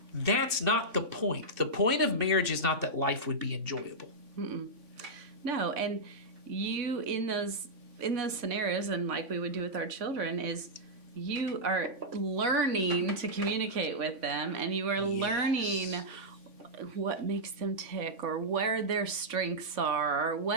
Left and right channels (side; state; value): left; late; 3.5 ms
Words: that's not the point. The point of marriage is not that life would be enjoyable. No, and you in those scenarios, and like we would do with our children, is you are learning to communicate with them, and you are learning what makes them tick, or where their strengths are, or